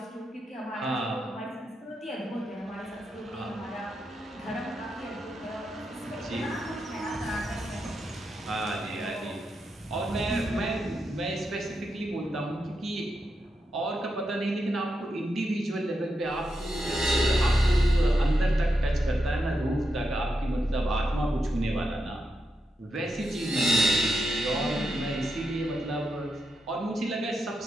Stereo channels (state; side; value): normal; both; correlation 0.86